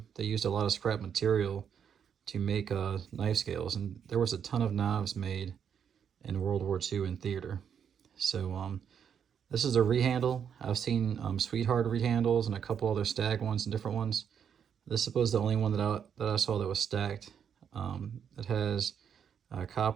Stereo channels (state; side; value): quieter; left; 7.9 dB